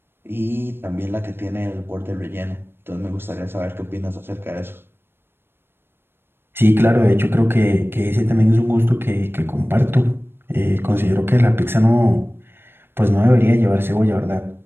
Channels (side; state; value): left; late; 0.11 ms